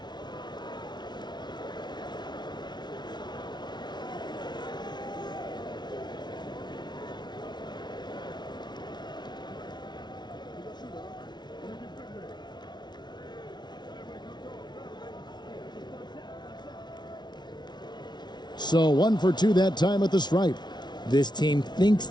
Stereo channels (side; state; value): right; late; 0.20 ms